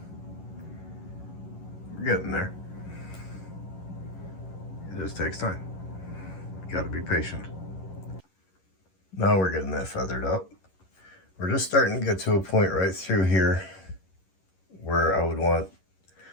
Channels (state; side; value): late; right; 11 ms